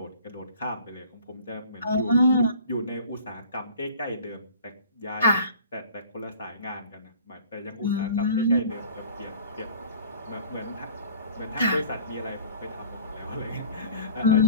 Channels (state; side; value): inverted; both; correlation -0.47